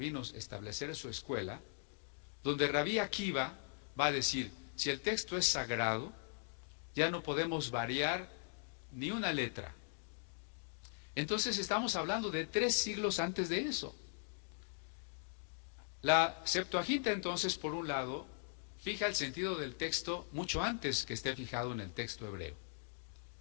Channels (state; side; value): silent; right; digital silence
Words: establecer su escuela, donde Rabí Akiva va a decir, si el texto es sagrado, ya no podemos variar ni una letra. Entonces estamos hablando de 3 siglos antes de eso. La Septuaginta entonces, por un lado, fija el sentido del texto mucho antes que esté fijado en el texto hebreo.